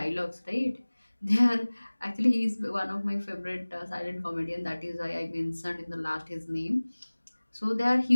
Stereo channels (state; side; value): inverted; both; correlation -1.00